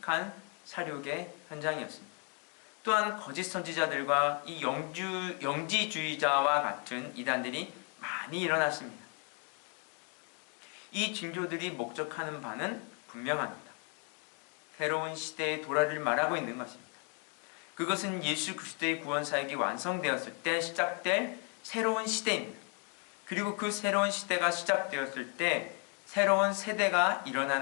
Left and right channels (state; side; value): quieter; right; 38.3 dB